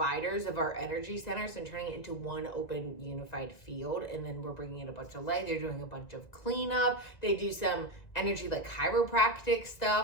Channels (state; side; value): late; right; 1.9 ms